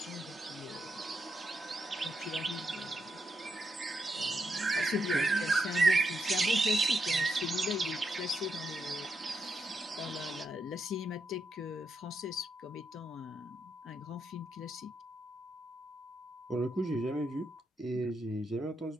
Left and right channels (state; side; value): normal; both; correlation 0.82